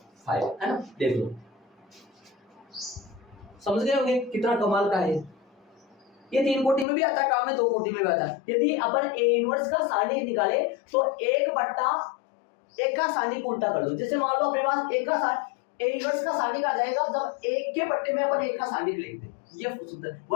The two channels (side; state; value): right; drops out; at 6.9 s